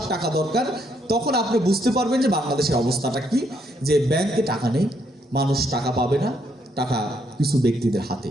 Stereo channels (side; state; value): both; normal; correlation 0.73